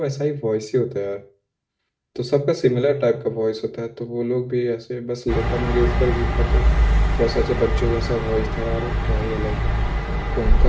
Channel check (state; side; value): identical; both; correlation 1.00